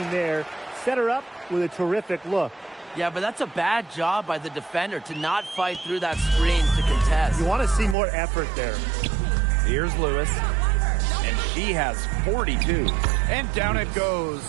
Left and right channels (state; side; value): drops out; left; at 8.0 s